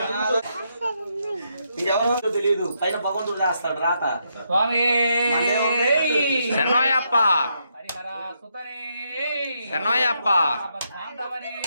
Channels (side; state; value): both; inverted; correlation -0.78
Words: ఎవరో తెలియదు పైన భగవంతుడు చేస్తాడు రాత స్వామి శరణయ్యప్ప హరిహర సుతనే శరణయ్యప్ప బాంధవనే